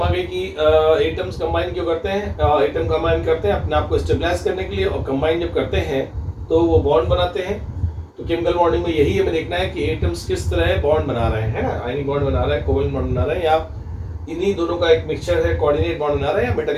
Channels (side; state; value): both; identical; correlation 1.00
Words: आ गई कि एटम्स कंबाइन क्यों करते हैं। एटम कंबाइन करते हैं अपने आप को स्टेबलाइज करने के लिए, और कंबाइन जब करते हैं तो वो बॉन्ड बनाते हैं। तो केमिकल बॉन्डिंग में यही हमें देखना है कि एटम्स किस तरह बॉन्ड बना रहे हैं, है ना, आयनिक बॉन्ड बना रहे हैं, कोवेलेंट बॉन्ड बना रहे हैं, या इन्हीं दोनों का एक मिक्सचर है, कोऑर्डिनेट बॉन्ड बना रहे हैं या